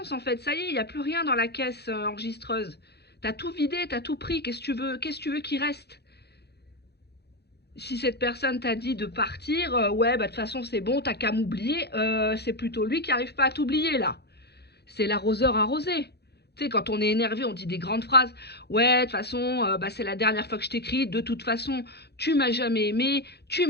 en fait. Ça y est, il n'y a plus rien dans la caisse enregistreuse. T'as tout vidé, t'as tout pris. Qu'est-ce que tu veux qu'il reste? Si cette personne t'a dit de partir, ouais, bah de toute façon, c'est bon, t'as qu'à m'oublier. C'est plutôt lui qui n'arrive pas à t'oublier, là. C'est l'arroseur arrosé. Tu sais, quand on est énervé, on dit des grandes phrases. Ouais, de toute façon, bah, c'est la dernière fois que je t'écris. De toute façon, tu m'as jamais aimé, tu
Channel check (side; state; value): right; late; 0.48 ms